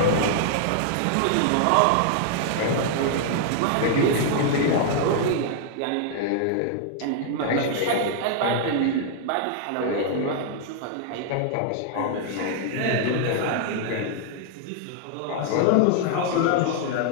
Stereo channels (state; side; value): different; both; correlation 0.00